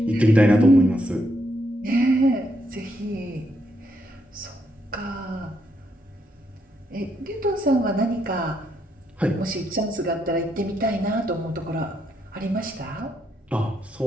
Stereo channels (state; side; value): normal; both; correlation 0.77